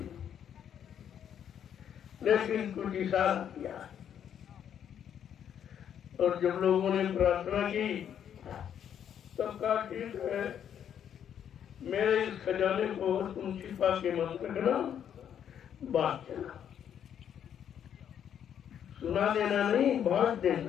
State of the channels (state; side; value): quieter; right; 9.1 dB